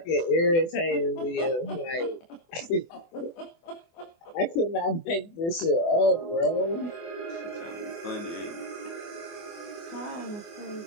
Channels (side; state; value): right; late; 24 ms